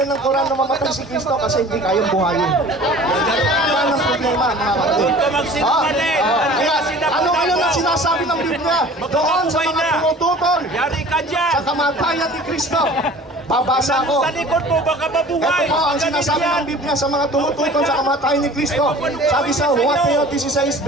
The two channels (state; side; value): normal; both; correlation 0.45